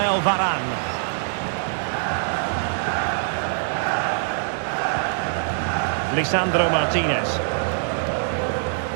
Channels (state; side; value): silent; left; 63 dB below the other